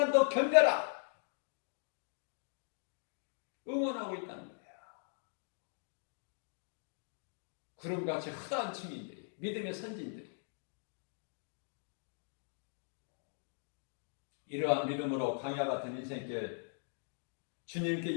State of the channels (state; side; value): silent; right; digital silence